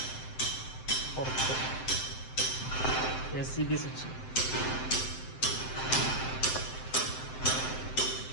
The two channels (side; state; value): right; late; 7.7 ms